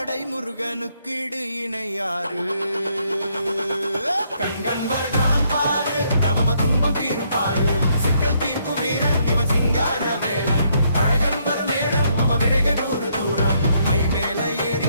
முருகனுக்கு இடு இணையாறு கண்கண் வருடான் பாரு தவம துன்பம் தீரும் பாரு சிக்கல் தீர்க்கும் வீரன் இவன் சிங்கார வேலன் அழகன் வரும் நேரம் மம விரக நூறு தூரம் மை மேல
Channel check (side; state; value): both; inverted; correlation -0.72